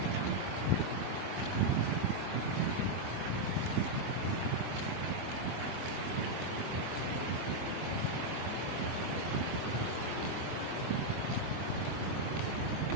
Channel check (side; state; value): left; late; 23 ms